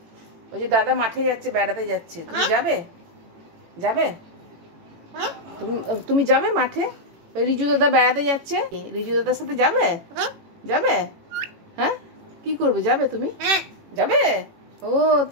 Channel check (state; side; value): late; left; 18 ms